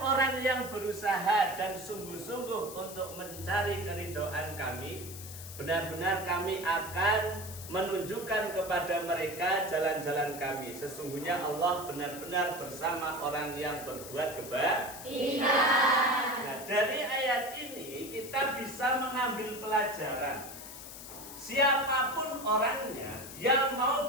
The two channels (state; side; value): noise; left; hiss, 12 dB below the sound